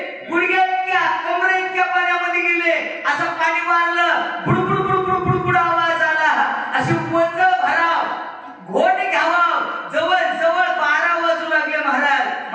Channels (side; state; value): both; identical; correlation 1.00